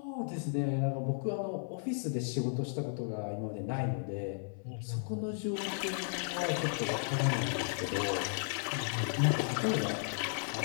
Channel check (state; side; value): silent; right; 55 dB below the other